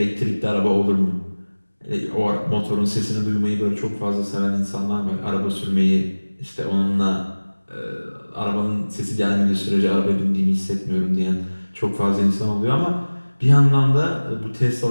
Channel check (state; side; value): inverted; both; correlation -1.00